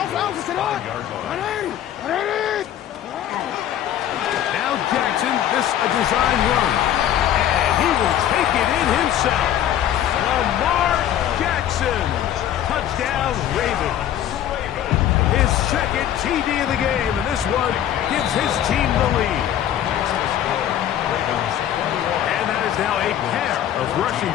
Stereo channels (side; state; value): right; quieter; 11.0 dB